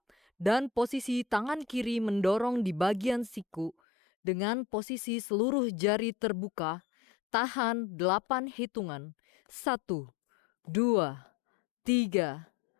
dan posisi tangan kiri mendorong di bagian siku dengan posisi seluruh jari terbuka. Tahan 8 hitungan. 1, 2, 3,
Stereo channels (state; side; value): drops out; right; at 3.8 s